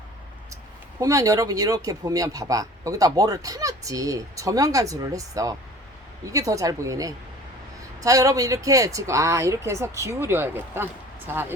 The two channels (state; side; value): normal; both; correlation 0.45